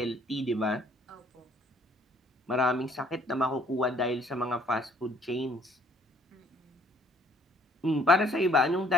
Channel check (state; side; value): normal; both; correlation 0.61